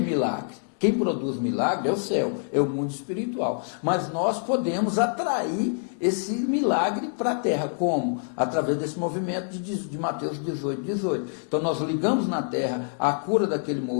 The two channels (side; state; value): right; silent; 61 dB below the other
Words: Quem produz milagre é o céu, é o mundo espiritual. Mas nós podemos atrair esse milagre para a terra. Como? Através desse movimento de Mateus 18, 18. Então nós ligamos na terra a cura daquele